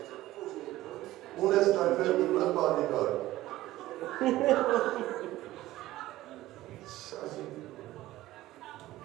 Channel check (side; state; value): left; quieter; 16.1 dB